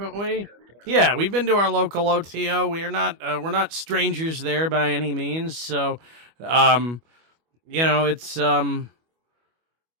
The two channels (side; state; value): left; late; 25 ms